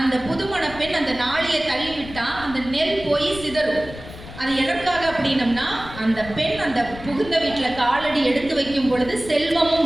புதுமண பெண் அந்த நாளியை தள்ளி விட்டா அந்த நெல் போய் சிதறும். அது எதற்காக அப்படின்னம்னா, அந்த பெண் அந்த புகுந்த வீட்டுல காலடி எடுத்து வைக்கும் பொழுது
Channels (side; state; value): left; noise; rumble, 14 dB below the sound